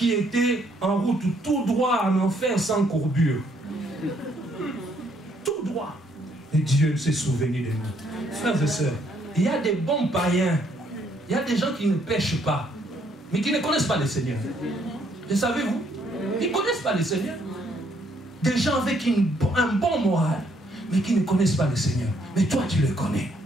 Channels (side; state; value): both; normal; correlation 0.69